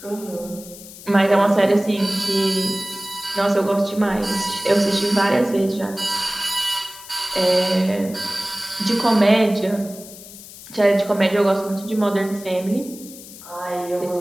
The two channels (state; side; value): noise; left; hiss, 17 dB below the sound